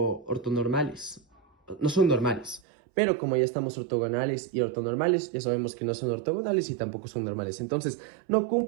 No son normales. Pero como ya estamos ortogonales y ortonormales, ya sabemos que no son ortogonales y tampoco son normales. Entonces, no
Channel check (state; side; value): drops out; left; at 2.6 s